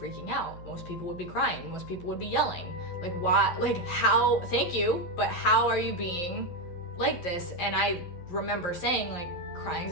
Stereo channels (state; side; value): late; right; 11 ms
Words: out. Most people would be crying. Most people would be yelling. Why? How? Thank you, but how are you being like this? And I remember saying,